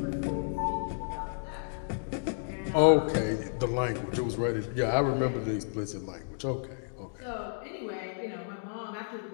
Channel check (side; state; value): right; silent; digital silence